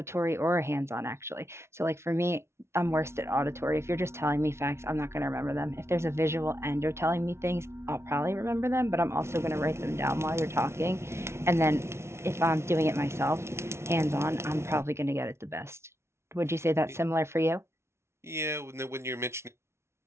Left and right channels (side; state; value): left; late; 0.13 ms